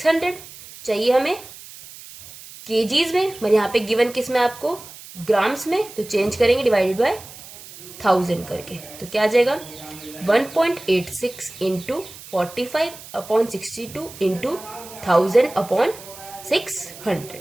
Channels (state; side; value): noise; right; hiss, 17 dB below the sound